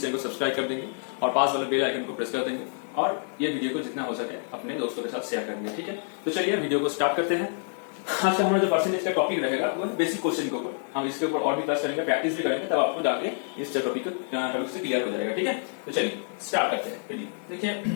चैनल को सब्सक्राइब कर देंगे और पास वाले बेल आइकन को प्रेस कर देंगे और ये वीडियो को जितना हो सके अपने दोस्तों के साथ शेयर करेंगे, ठीक है। तो चलिए वीडियो को स्टार्ट करते हैं। आज का हमारा जो परसेंटेज का टॉपिक रहेगा वो बेसिक क्वेश्चन के ऊपर। हम इसके ऊपर और भी क्लास करेंगे, प्रैक्टिस भी करेंगे, तब आपको जाके इस टॉपिक से क्लियर हो जाएगा, ठीक है। तो चलिए स्टार्ट करते हैं।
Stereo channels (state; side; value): silent; right; 58 dB below the other